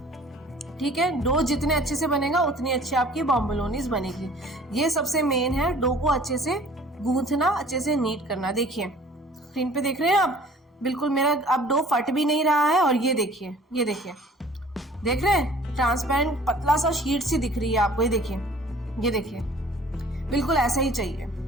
ठीक है, डो जितने अच्छे से बनेगा उतनी अच्छी आपकी बॉम्बलोनीज बनेगी। ये सबसे मेन है, डो को अच्छे से गूंथना, अच्छे से नीट करना। देखिए स्क्रीन पे देख रहे हैं आप, बिल्कुल मेरा अब डो फट भी नहीं रहा है। और ये देखिए, ये देखिए, देख रहे हैं, ट्रांसपेरेंट पतला सा शीट सी दिख रही है आपको। ये देखिए, ये देखिए, बिल्कुल ऐसा ही चाहिए।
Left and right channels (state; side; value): normal; both; correlation 0.50